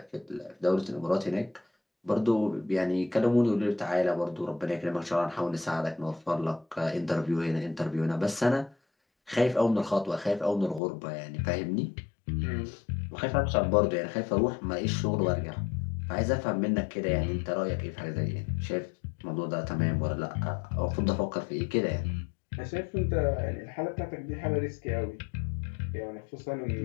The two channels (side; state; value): right; drops out; at 10.8 s